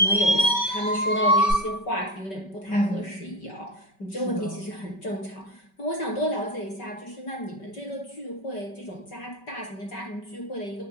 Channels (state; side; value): late; right; 5.2 ms